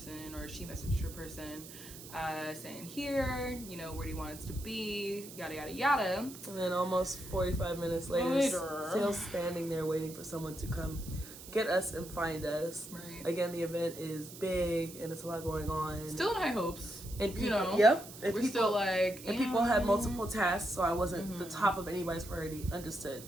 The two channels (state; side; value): noise; right; hiss, 15 dB below the sound